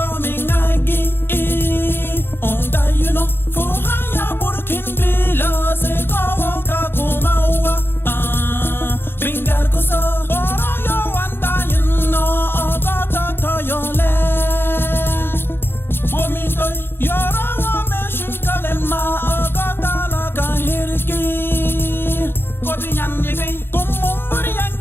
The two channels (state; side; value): late; right; 0.11 ms